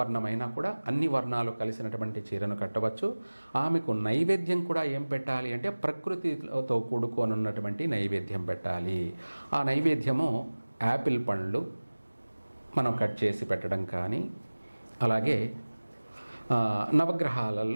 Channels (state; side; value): inverted; both; correlation -1.00